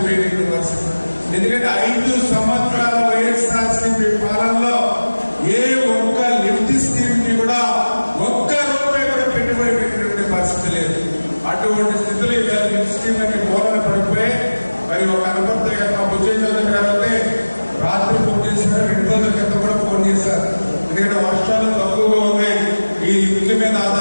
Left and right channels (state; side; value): inverted; both; correlation -1.00